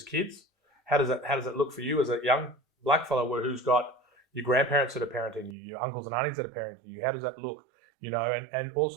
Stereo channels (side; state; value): left; drops out; at 5.6 s